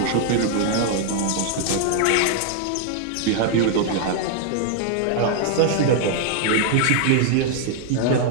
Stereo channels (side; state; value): both; different; correlation 0.00